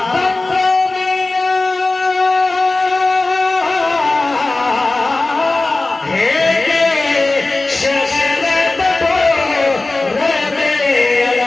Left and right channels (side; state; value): right; quieter; 3.1 dB